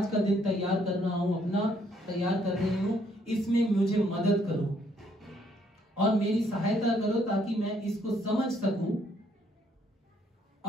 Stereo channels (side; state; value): both; normal; correlation 0.68